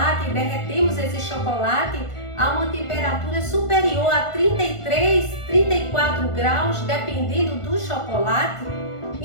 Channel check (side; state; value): right; late; 1.5 ms